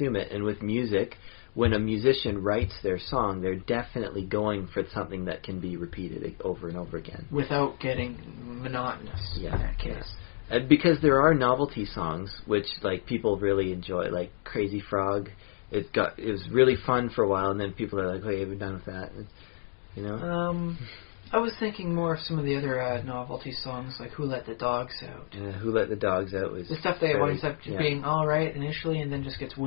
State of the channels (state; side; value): silent; right; digital silence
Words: it. And with music, when a musician writes their song, they're definitely going for something that can be repeated over and over again. Without getting monotonous in that case. Because there are novelty songs which people really enjoy, like Crazy Frog. It was really fun for a while, and then people are like, "Hey, we're done with that." I was thinking more of some of the other novelty songs, like "Who Let the Dogs Out." "Who Let the Dogs Out" was the stuff that winds up being all right initially, and then just gets